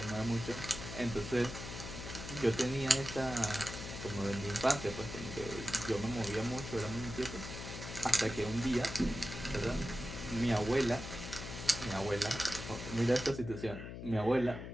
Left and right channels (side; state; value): left; noise; hum, 9 dB below the sound